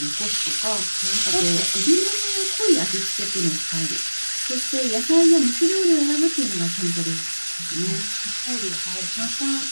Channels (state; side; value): inverted; both; correlation -1.00